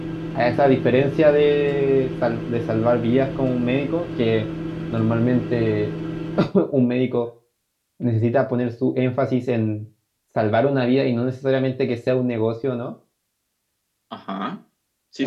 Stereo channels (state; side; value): identical; both; correlation 1.00